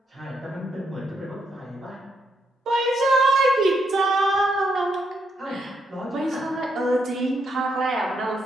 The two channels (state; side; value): normal; both; correlation 0.77